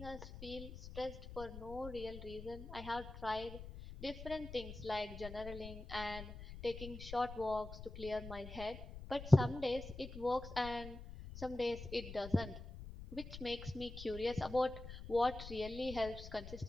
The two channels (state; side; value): noise; left; rumble, 11 dB below the sound